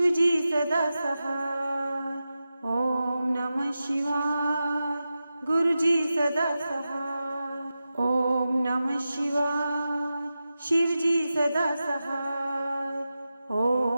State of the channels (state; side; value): inverted; both; correlation -0.92